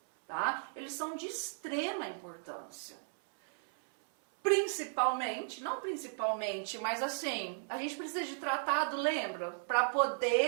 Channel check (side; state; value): left; silent; 54 dB below the other